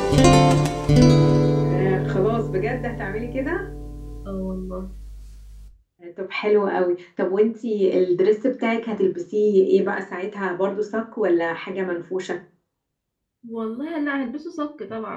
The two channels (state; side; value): identical; both; correlation 1.00